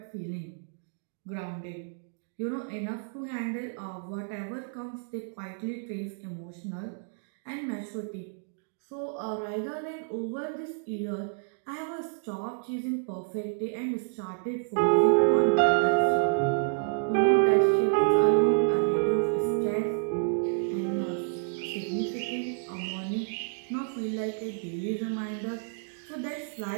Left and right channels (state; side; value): silent; left; digital silence